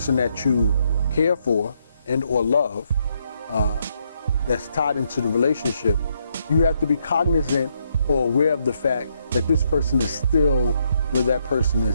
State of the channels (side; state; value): both; inverted; correlation -0.76